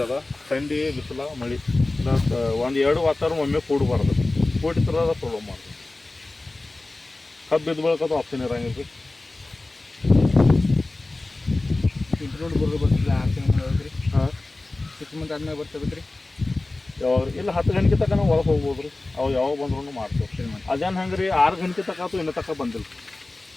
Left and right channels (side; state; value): right; quieter; 3.0 dB